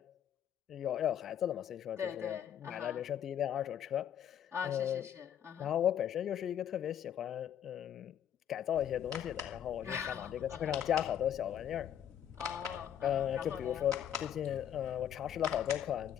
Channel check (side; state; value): right; quieter; 9.8 dB